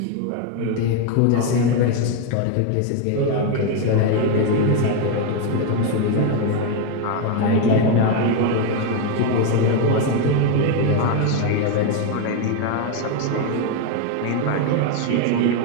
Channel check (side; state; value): both; different; correlation 0.02